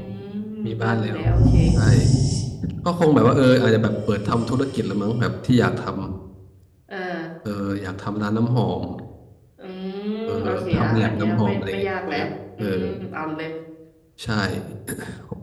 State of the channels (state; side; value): identical; both; correlation 1.00